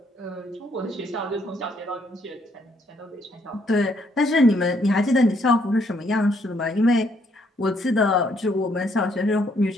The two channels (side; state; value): both; normal; correlation 0.70